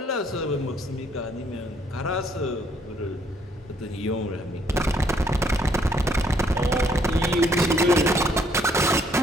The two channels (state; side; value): normal; both; correlation 0.67